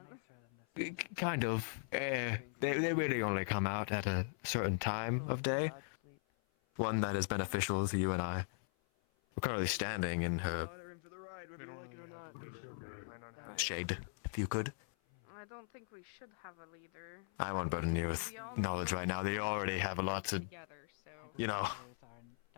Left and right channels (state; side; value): silent; right; 51 dB below the other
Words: doesn't. Kind of. They really only come out at a certain time of day. One that is beneficial to you and I. We're currently standing in her Water in for the ride, whether you like it or not. Plan on having shade, if you could. I don't think we should have a leader. I won't burden you with knowledge right now. They already have a lot to, Together, so you know, Others are in